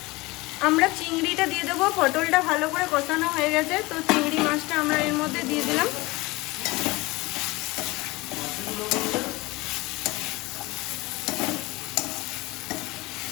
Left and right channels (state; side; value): quieter; right; 22.3 dB